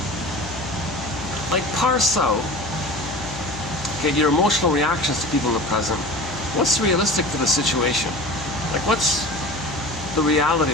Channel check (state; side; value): noise; left; hum, 14 dB below the sound